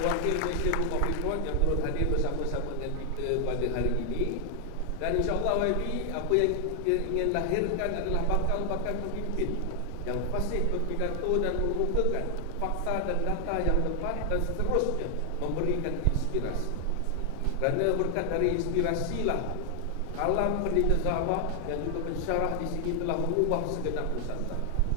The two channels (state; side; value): different; both; correlation 0.00